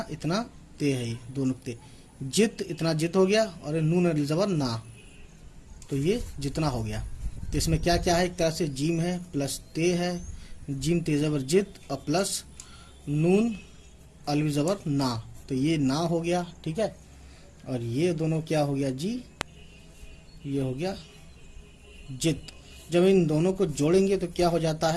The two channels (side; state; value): both; identical; correlation 1.00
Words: इतना ते है, ये दो नुक्ते। जित, इतना जित हो गया, और नून अली ज़बर ना, तो ये जितना हो गया। तो इसमें क्या क्या है, एक तरह से जीम है प्लस ते है, जीम ते ज़बर जित, और प्लस नून अली ज़बर ना, तो ये ना हो गया, ठीक है। और ये दोनों क्या हो गया जी, ये हो गया जित। जब इन दोनों को जोड़ेंगे तो क्या हो जाता